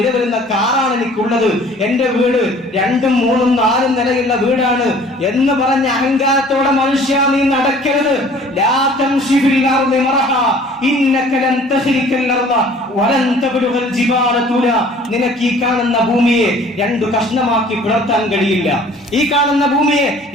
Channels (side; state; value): both; normal; correlation 0.51